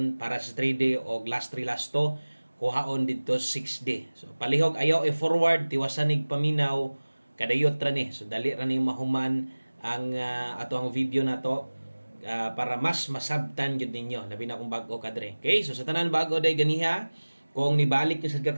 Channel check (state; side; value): inverted; both; correlation -1.00